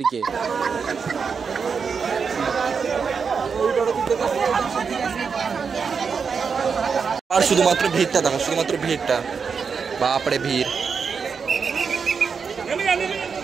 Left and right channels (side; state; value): left; quieter; 5.8 dB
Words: আর শুধুমাত্র ভিড়টা দেখো, শুধুমাত্র ভিড়টা। বাপরে ভিড়,